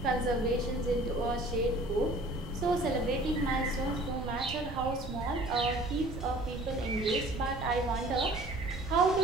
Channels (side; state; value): right; noise; rumble, 9 dB below the sound